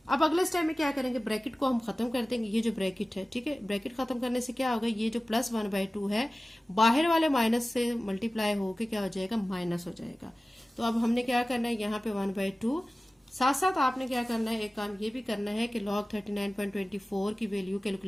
अब अगले स्टेप में क्या करेंगे, ब्रैकेट को हम खत्म कर देंगे। ये जो ब्रैकेट है, ठीक है, ब्रैकेट खत्म करने से क्या होगा, ये जो प्लस 1/2 है बाहर वाले माइनस से मल्टीप्लाई होके क्या हो जाएगा, माइनस हो जाएगा। तो अब हमने क्या करना है, यहाँ पे 1/2, साथ साथ आपने क्या करना है, एक काम ये भी करना है कि log 39.24 की वैल्यू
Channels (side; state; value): both; normal; correlation 0.97